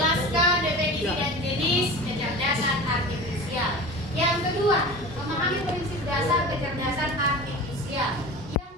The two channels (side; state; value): both; normal; correlation 0.34